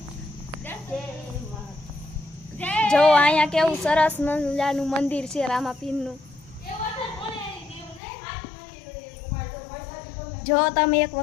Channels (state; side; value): drops out; right; at 8.0 s